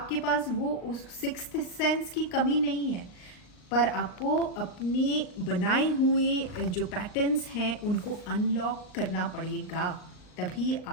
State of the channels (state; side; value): late; right; 39 ms